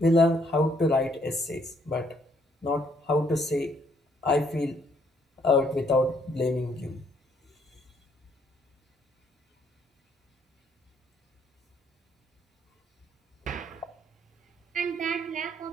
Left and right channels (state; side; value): normal; both; correlation 0.68